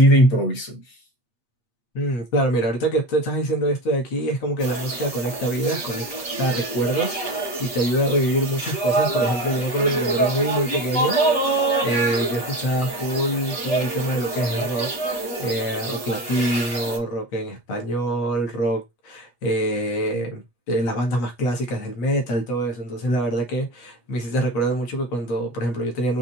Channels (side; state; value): right; late; 8.4 ms